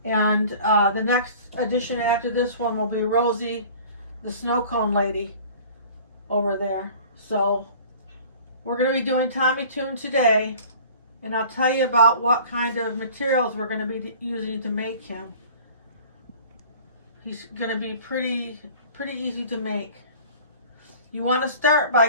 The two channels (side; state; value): both; inverted; correlation -0.46